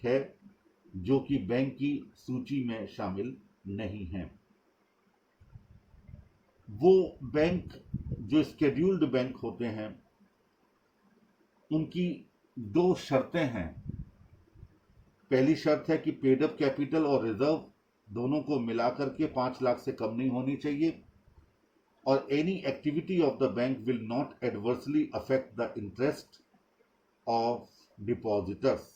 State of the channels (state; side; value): identical; both; correlation 1.00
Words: है, जो कि बैंक की सूची में शामिल नहीं है। वो बैंक जो शेड्यूल्ड बैंक होते हैं, उनकी 2 शर्तें हैं। पहली शर्त है कि पेड अप कैपिटल और रिजर्व दोनों को मिलाकर के 5 लाख से कम नहीं होनी चाहिए, और any activity of the bank will not adversely affect the interest of depositors.